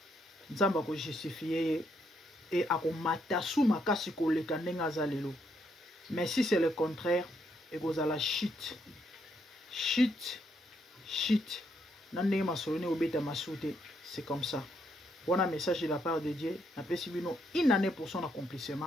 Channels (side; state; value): both; normal; correlation 0.75